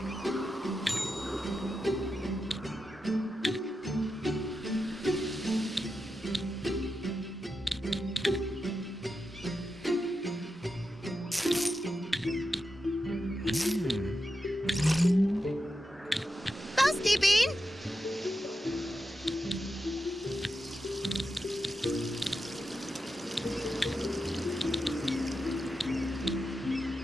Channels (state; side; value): normal; both; correlation 0.89